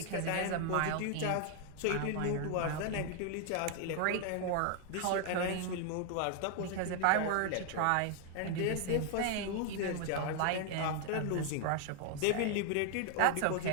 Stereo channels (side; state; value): both; different; correlation 0.00